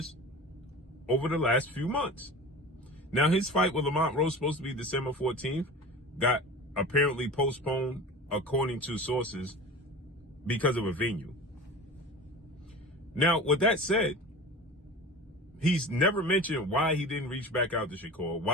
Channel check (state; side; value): normal; both; correlation 0.34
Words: over the last few months. Now, his fight with Lamont Roach, supposed to be December 14th, got apparently postponed, according to sources, because of a venue. Now, with that said, he's never mentioned why he didn't reach back out to Shakur,